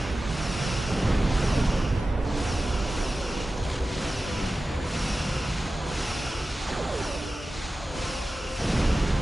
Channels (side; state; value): both; normal; correlation 0.95